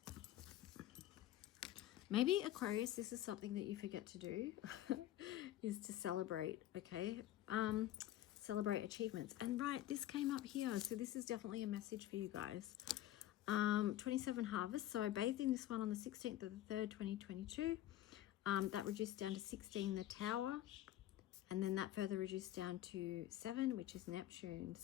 Maybe Aquarius, this is something that you forget to do, is to celebrate, okay? Celebrate achievements. And right, this came up here, so this is definitely a message for you guys. 27 harvest, so I bathed in this one on the 16th of the 3rd, 2022. That reduced down to 16, the tower, and then that further reduced down to 7, which is Neptune.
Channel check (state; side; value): quieter; right; 13.7 dB